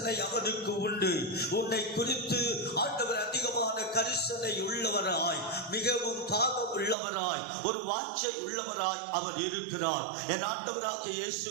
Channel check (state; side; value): drops out; left; at 7.0 s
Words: அவருக்கு உண்டு. உன்னை குறித்து ஆண்டவர் அதிகமான கரிசனை உள்ளவராய், மிகவும் தாகம் உள்ளவராய், ஒரு வாஞ்சை உள்ளவராய் அவர் இருக்கிறார். என் ஆண்டவராகிய இயேசு